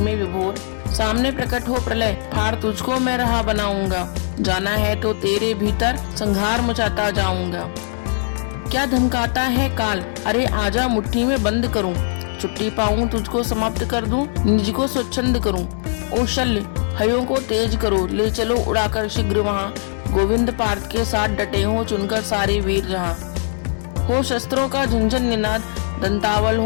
विभोर। सामने प्रकट हो प्रलय फाड़ तुझको मैं रहा बनाऊंगा, जाना है तो तेरे भीतर संहार मचाता जाऊंगा। क्या धमकाता है काल अरे आजा मुट्ठी में बंद करूं, छुट्टी पाऊं तुझको समाप्त कर दूं निज को स्वच्छंद करूं। ओ शल्य हयों को तेज करो ले चलो उड़ाकर शीघ्र वहां, गोविंद पार्थ के साथ डटे हो चुनकर सारे वीर जहां। हो शस्त्रों का झंझन निनाद दंतावल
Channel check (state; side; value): silent; right; digital silence